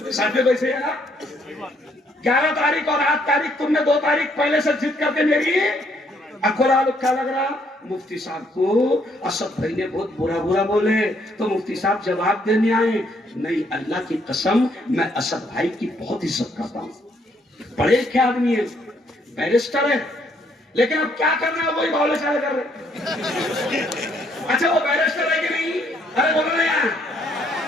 साथ वैसे है ना, 11 तारीख और 8 तारीख तुमने 2 तारीख पहले से जिद करके मेरी अखोला क्या लग रहा। मुफ्ती साहब को असद भाई ने बहुत बुरा बुरा बोले तो मुफ्ती साहब जवाब देने आए। नहीं, अल्लाह की कसम, मैं असद भाई की बहुत इज्जत करता हूँ, बड़े लिखे आदमी है, बैरिस्टर है, लेकिन अब क्या करना है वही बावले चाले कर रहे। अच्छा वो बैरिस्टर है कि नहीं? अरे बोलो ना यार।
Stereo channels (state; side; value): normal; both; correlation 0.69